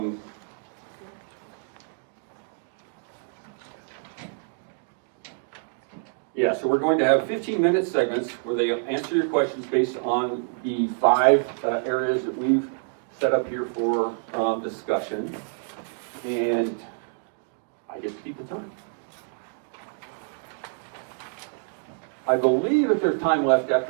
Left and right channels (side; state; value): left; silent; 58 dB below the other